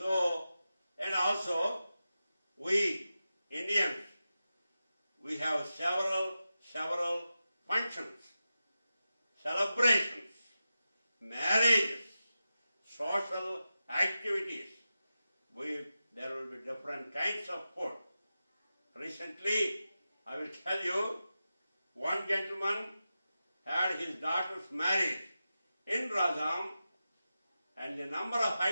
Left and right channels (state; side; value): inverted; both; correlation -0.93